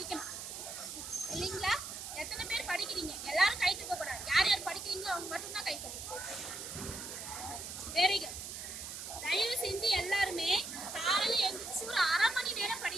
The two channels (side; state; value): right; noise; hiss, 8 dB below the sound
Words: இல்லைங்களா? எத்தனை பேர் படிக்கிறீங்க? எல்லாரும் கை தூக்க கூடாது. யார் யார் படிக்கிறீங்களோ அவங்க மட்டும்தான் கை தூக்கணும். Very good. தயவு செஞ்சு எல்லாருமே காலையில எழுந்திரிச்சு ஒரு 1/2 மணி நேரம்